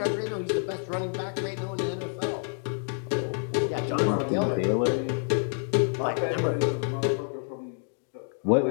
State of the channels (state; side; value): silent; right; 59 dB below the other